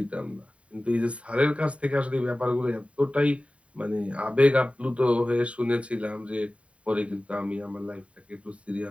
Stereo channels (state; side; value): late; left; 0.064 ms